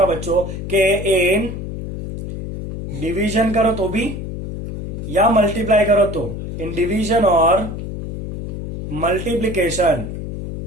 बच्चों के इन डिवीजन करो तो भी या मल्टीप्लाई करो तो, इन डिवीजन और मल्टीप्लीकेशन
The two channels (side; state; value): left; noise; hum, 7 dB below the sound